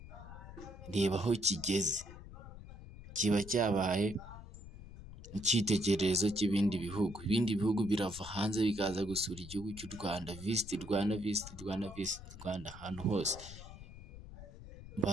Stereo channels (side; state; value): left; noise; rumble, 14 dB below the sound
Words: reba aho kigeze, kiba cyabaye icyitegererezo cy'ibindi bihugu. Ibindi bihugu birava hanze bikaza gusura igihugu cy'u Rwanda, visit Rwanda ahantu hose.